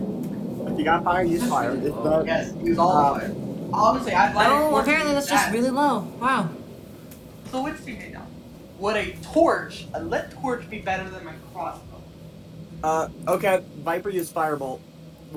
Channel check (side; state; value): both; identical; correlation 1.00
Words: If you got fire, use fire. If not, Yes, use all the fire. Honestly, I'd like. Oh, apparently that's just really low. Wow. So which do you need now? Would a torch, a lit torch, be better than my crossbow? okay. Viper used firebolt